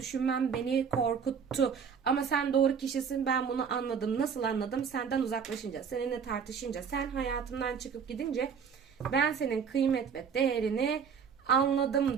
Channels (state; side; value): quieter; left; 6.6 dB